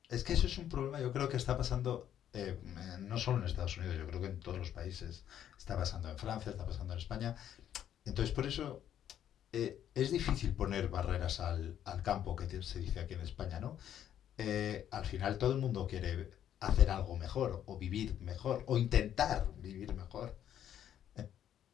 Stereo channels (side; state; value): right; quieter; 10.4 dB